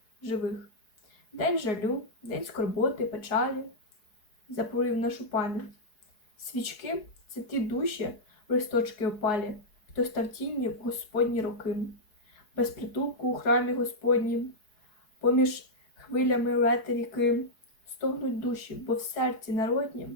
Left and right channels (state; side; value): late; right; 4.7 ms